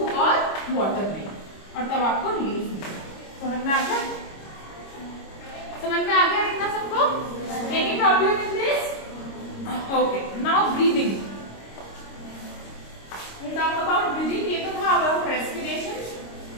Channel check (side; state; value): right; late; 26 ms